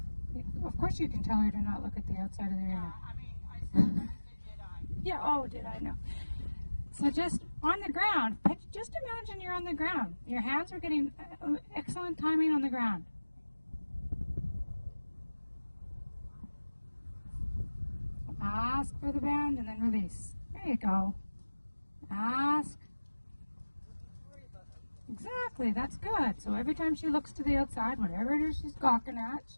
No. Of course you can tell her to not look at the outside of the arena. Yeah, I mean, I said that, did I? Yeah, oh, did I know. So just on the ground, just imagine you're on the ground. Your hands are getting excellent timing on the ground. Ask for the bend and then release. There you go. Ask. Exactly, that's good. So every time she looks to the outside, whatever it is she's gawking at,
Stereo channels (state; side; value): inverted; both; correlation -1.00